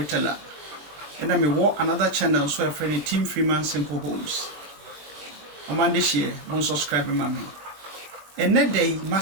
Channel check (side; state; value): left; late; 21 ms